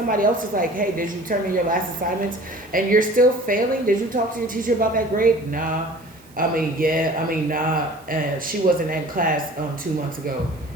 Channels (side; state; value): right; noise; hiss, 27 dB below the sound